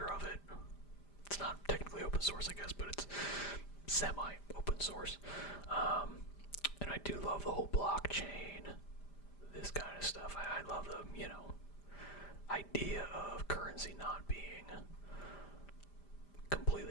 of it. It's not technically open source, I guess, but it's semi-open source. And I do love the whole blockchain, this kind of stuff. I love the, idea of currency not being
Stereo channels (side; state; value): right; late; 5.0 ms